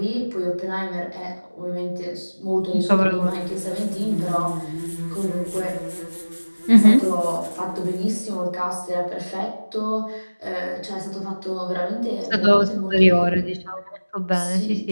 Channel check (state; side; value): inverted; both; correlation -1.00